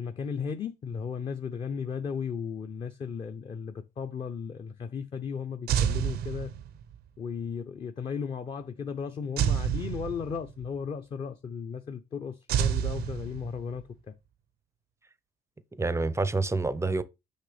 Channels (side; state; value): both; normal; correlation 0.60